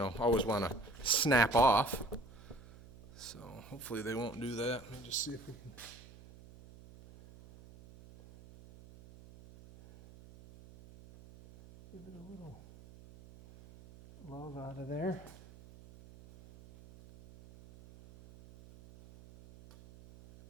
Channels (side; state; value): right; noise; hum, 20 dB below the sound